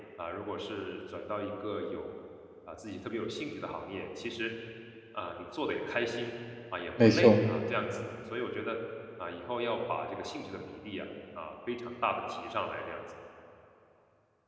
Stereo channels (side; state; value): both; identical; correlation 1.00